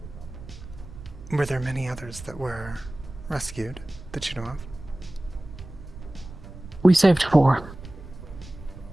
Were there many others that were rescued that you know of? We saved 4.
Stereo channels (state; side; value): noise; right; rumble, 15 dB below the sound